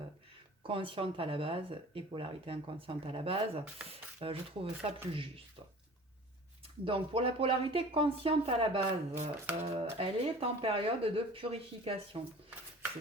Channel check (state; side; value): normal; both; correlation 0.43